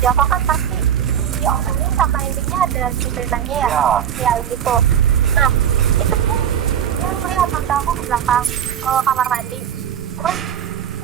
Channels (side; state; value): left; quieter; 9.2 dB